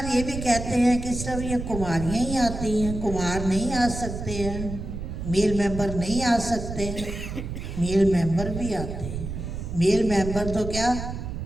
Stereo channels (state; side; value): noise; right; rumble, 7 dB below the sound